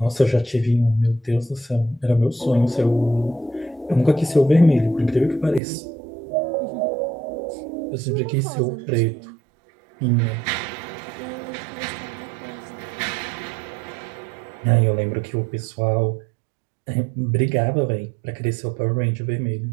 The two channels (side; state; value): left; drops out; at 5.6 s